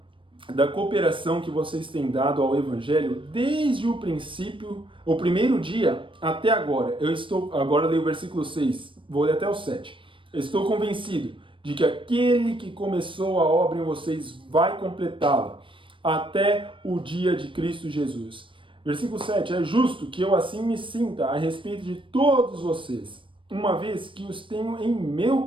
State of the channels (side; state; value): left; late; 0.25 ms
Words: da cooperação que vocês têm dado ao Evangelho desde o princípio, o primeiro dia até agora. Agora leio o versículo 6, vou ler até o 7. Estou convencido de que aquele que começou a obra em vocês vai completá-la até o dia de Cristo Jesus. Versículo 7, é justo que eu assim me sinta a respeito de todos vocês, uma vez que os tenho em meu